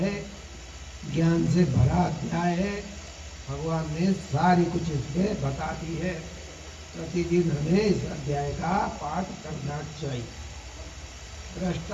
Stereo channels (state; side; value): identical; both; correlation 1.00